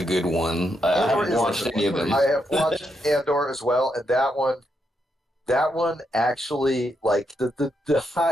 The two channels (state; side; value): normal; both; correlation 0.81